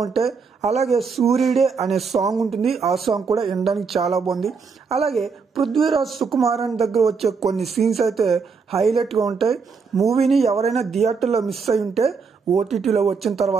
ఉంటాయి. అలాగే సూర్యుడే అనే సాంగ్ ఉంటుంది, ఆ సాంగ్ కూడా వినడానికి చాలా బాగుంది. అలాగే పృథ్వీరాజ్ సుకుమారన్ దగ్గర వచ్చే కొన్ని సీన్స్ అయితే హైలైట్గా ఉంటాయి. మూవీని ఎవరైనా థియేటర్లో మిస్ అయి ఉంటే ఓటీటీలో వచ్చిన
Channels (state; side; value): quieter; left; 5.2 dB